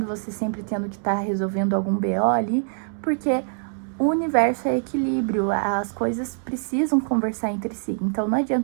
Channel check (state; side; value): silent; left; 63 dB below the other